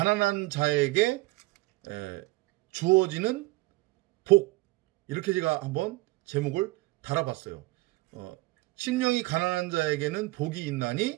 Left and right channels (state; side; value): quieter; left; 21.4 dB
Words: 자에게 주어지는 복. 이렇게 제가 한번 제목을 달아봤어요. 심령이 가난한 자에게는 복이